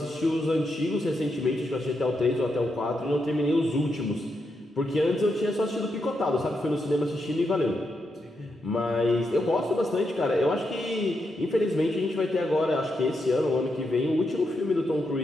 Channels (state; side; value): normal; both; correlation 0.83